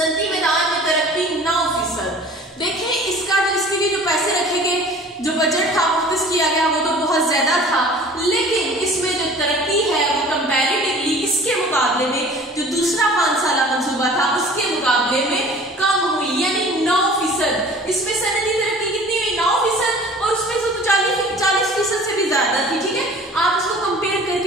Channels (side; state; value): both; normal; correlation 0.46